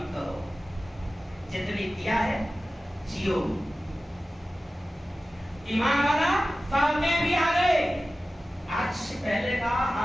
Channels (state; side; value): normal; both; correlation 0.95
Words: کرو. جتنی دیا ہے جیو. ایمان والا فاتح بھی آ گئے. آج سے پہلے کا